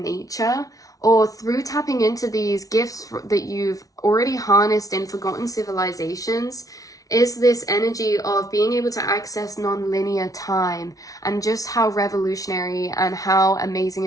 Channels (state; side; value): late; right; 0.17 ms